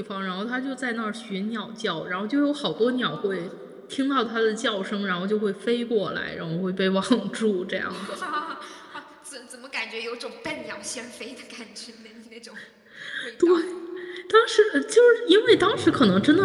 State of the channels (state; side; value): identical; both; correlation 1.00